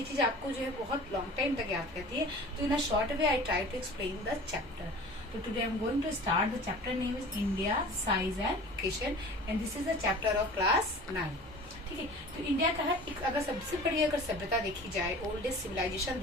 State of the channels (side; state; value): both; normal; correlation 0.41